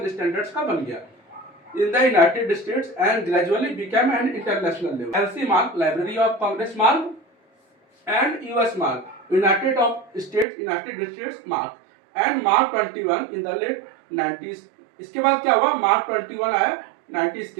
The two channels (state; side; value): drops out; left; at 10.5 s